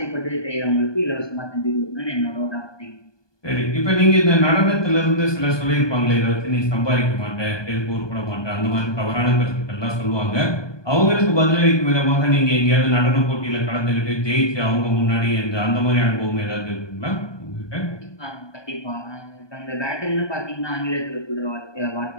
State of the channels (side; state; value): right; late; 1.2 ms